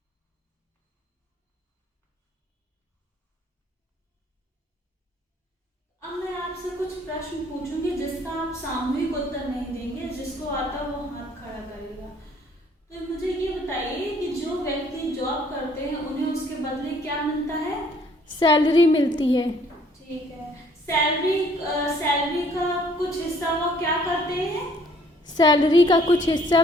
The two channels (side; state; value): both; normal; correlation 0.60